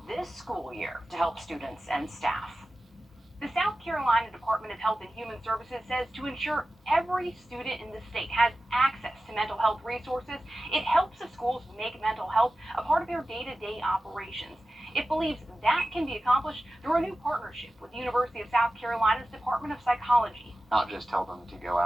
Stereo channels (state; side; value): normal; both; correlation 0.94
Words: this school year to help students and staff. The South Carolina Department of Health and Human Services says to ensure every student in the state has access to mental health resources, it helps the schools make mental health a part of their day-to-day operations. It believes that can be accomplished through a new partnership with the University of South Carolina's Department of Psychology. Not just tell them to go